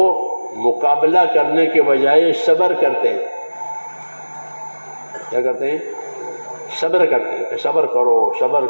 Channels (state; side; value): inverted; both; correlation -1.00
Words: مقابلہ کرنے کے بجائے صبر کرتے ہیں. کیا کرتے ہیں؟ صبر کرتے ہیں. صبر کرو، صبر